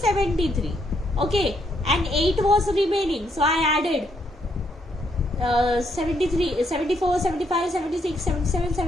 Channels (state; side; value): normal; both; correlation 0.74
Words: Okay, and 8 was remaining, so I added 73, 74, 75, 76, 77,